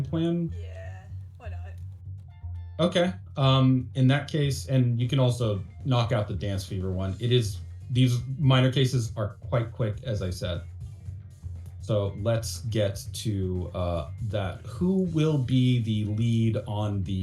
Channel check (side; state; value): both; identical; correlation 1.00